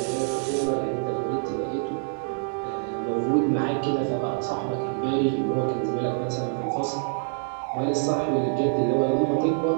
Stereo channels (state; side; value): silent; left; digital silence